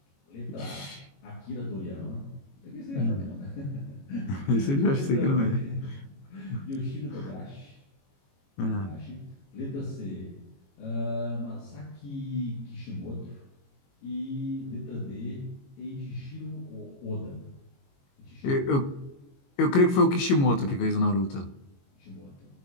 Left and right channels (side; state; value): right; late; 22 ms